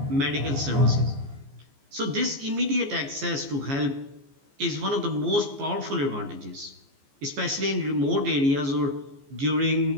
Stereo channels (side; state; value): left; late; 14 ms